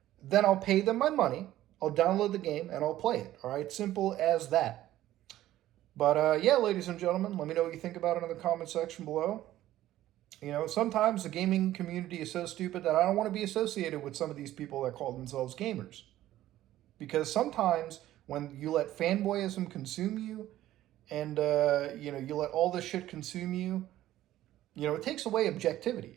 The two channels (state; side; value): quieter; left; 14.0 dB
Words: then I'll pay them my money. I'll download the game, and I'll play it. All right? Simple as that. But yeah, ladies and gentlemen, let me know what you think about it in the comment section below. Sometimes the gaming community is so stupid that I don't want to be associated with some of these people that call themselves gamers. Because sometimes when you let fanboyism consume you and, you let all this shit consume you, it takes away objectivity.